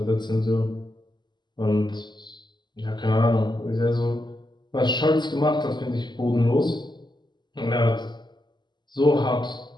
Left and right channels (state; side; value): late; right; 0.21 ms